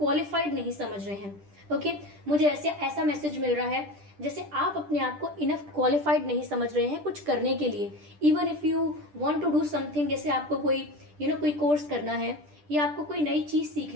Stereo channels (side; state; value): left; late; 10 ms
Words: नहीं समझ रहे हैं। ओके, मुझे ऐसा मैसेज मिल रहा है जैसे आप अपने आप को इनफ क्वालिफाइड नहीं समझ रहे हैं कुछ करने के लिए। Even if you want to do something, जैसे आपको कोई कोर्स करना है या आपको कोई नई चीज